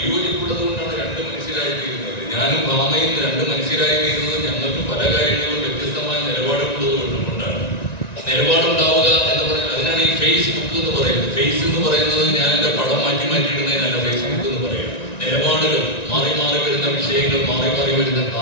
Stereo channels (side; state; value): right; late; 1.9 ms